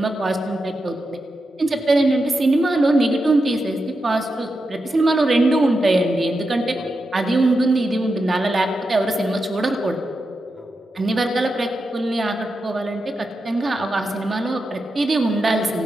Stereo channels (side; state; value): both; normal; correlation 0.88